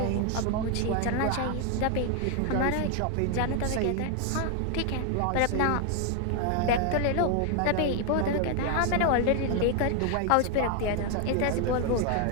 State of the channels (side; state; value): both; different; correlation 0.00